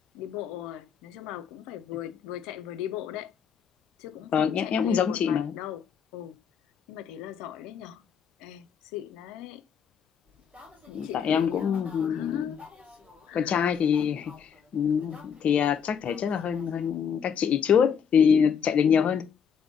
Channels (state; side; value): quieter; right; 7.4 dB